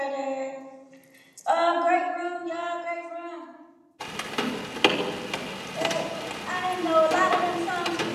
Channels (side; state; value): both; identical; correlation 1.00